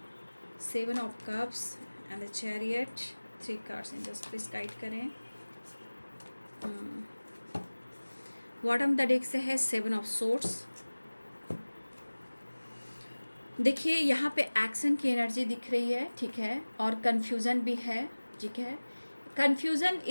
7 of cups and the chariot, 3 cards in just please guide करें। बॉटम द डेक से है 7 of swords। देखिए यहाँ पे एक्शन की एनर्जी दिख रही है, ठीक है, और कन्फ्यूज़न भी है, ठीक है। कन्फ्यूज़न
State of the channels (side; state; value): both; inverted; correlation -1.00